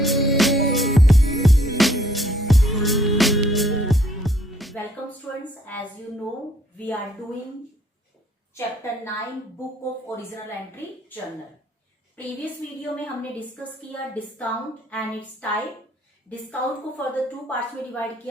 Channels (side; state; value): both; normal; correlation 0.64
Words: students, as you know we are doing chapter 9 book of original entry journal. Previous video में हमने discuss किया discount and its type. Discount को further two parts में divide